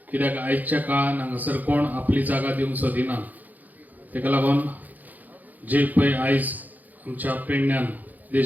कित्याक आयच्या काळान हांगासर कोण आपली जागा दिवंक सोदिना. तेका लागून जे पळय आयज आमच्या पेडण्यान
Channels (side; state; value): left; late; 0.082 ms